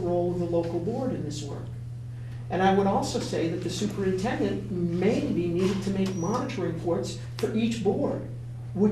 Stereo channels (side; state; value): both; identical; correlation 1.00